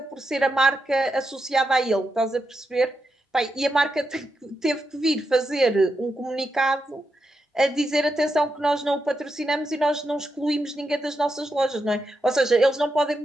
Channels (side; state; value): both; normal; correlation 0.86